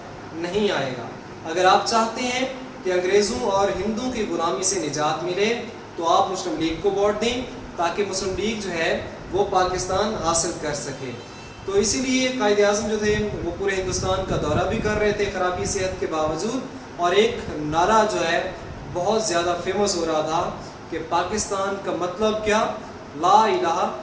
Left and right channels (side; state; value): both; identical; correlation 1.00